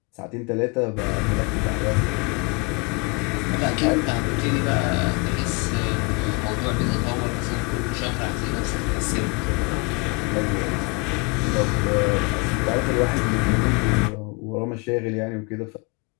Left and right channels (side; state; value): right; quieter; 30.2 dB